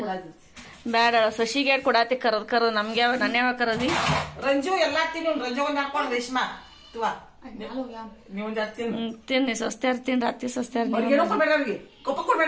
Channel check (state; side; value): identical; both; correlation 1.00